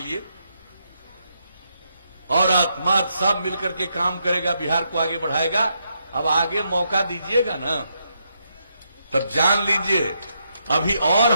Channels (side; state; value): both; inverted; correlation -0.79